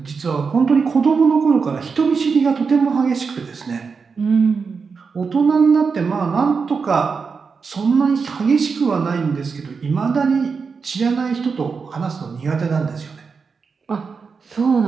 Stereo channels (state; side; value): quieter; left; 5.2 dB